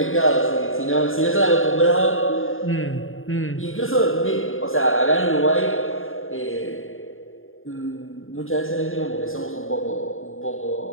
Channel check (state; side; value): late; right; 0.59 ms